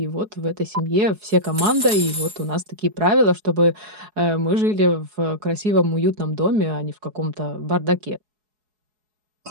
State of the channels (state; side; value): late; left; 4.7 ms